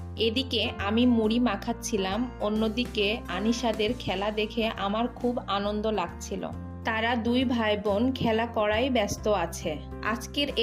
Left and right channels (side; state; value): both; identical; correlation 1.00